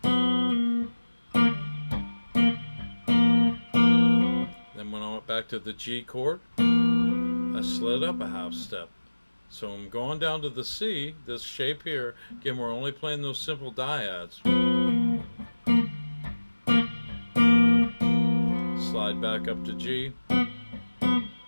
Then when I went back to the G chord, I slid up a half step. So I'm going down to the C, this shape here. Again, we're only playing those simple dyads. Slide back up to G.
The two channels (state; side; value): inverted; both; correlation -1.00